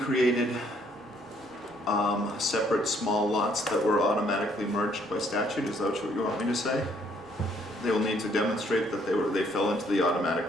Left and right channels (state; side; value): normal; both; correlation 0.66